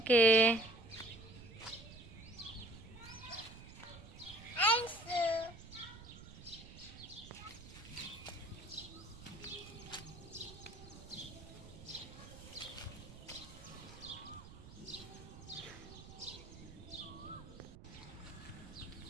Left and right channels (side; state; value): right; noise; rumble, 15 dB below the sound